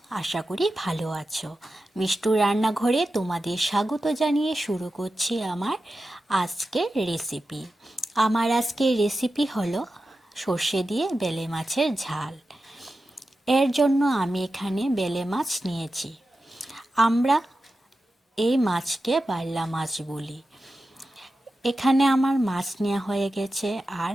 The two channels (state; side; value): normal; both; correlation 0.92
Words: আশা করি ভালো আছো। মিষ্টুর রান্নাঘরে তোমাদের স্বাগত জানিয়ে শুরু করছি আমার আজকের রেসিপি। আমার আজকের রেসিপি হলো সর্ষে দিয়ে বেলে মাছের ঝাল। এর জন্য আমি এখানে বেলে মাছ নিয়েছি। আমরা এই মাছকে বাইলা মাছ বলি। এখানে আমার মাছ নেওয়া হয়ে গেছে, আর